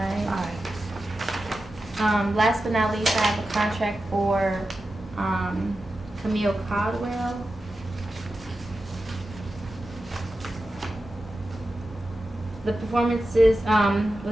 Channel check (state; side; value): normal; both; correlation 0.92